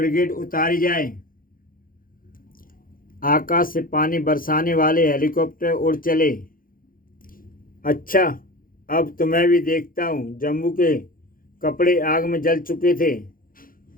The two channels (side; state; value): right; late; 0.41 ms